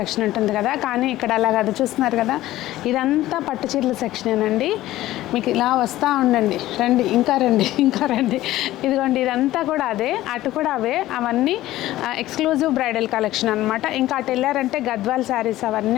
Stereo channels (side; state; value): right; quieter; 15.4 dB